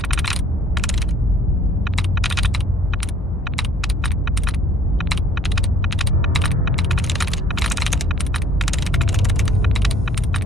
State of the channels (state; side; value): normal; both; correlation 0.55